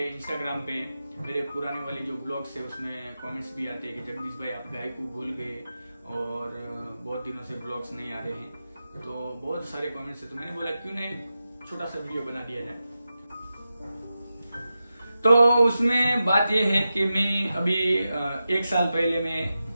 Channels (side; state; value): both; inverted; correlation -0.92